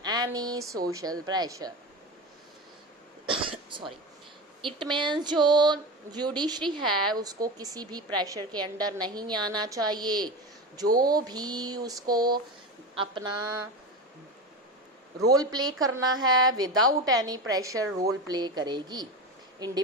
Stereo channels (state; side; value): normal; both; correlation 0.24